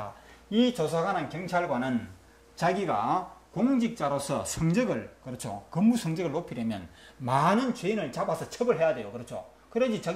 이 조사관은 경찰관은 자기가 공직자로서 성적을, 그렇죠, 근무 성적을 높이려면 많은 죄인을 잡아서 처벌해야 돼요. 그렇죠. 그래야지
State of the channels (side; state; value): both; identical; correlation 1.00